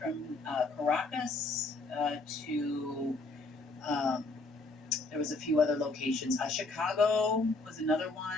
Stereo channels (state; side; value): quieter; right; 3.3 dB